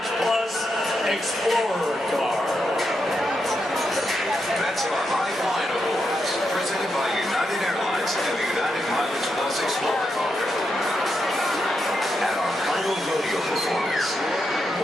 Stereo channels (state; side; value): normal; both; correlation 0.84